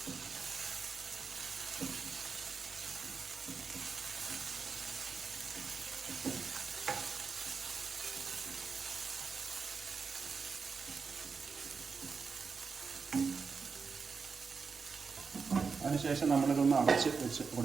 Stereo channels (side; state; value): left; quieter; 5.2 dB